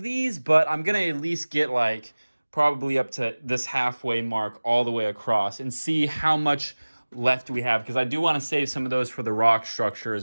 these, but I'm going to at least get like probably up to this halfway mark all the way across and see how much left we have, because I do want to save some of those for the rock structure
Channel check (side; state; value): both; inverted; correlation -1.00